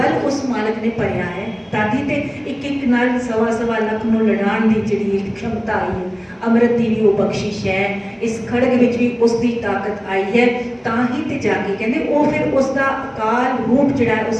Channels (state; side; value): identical; both; correlation 1.00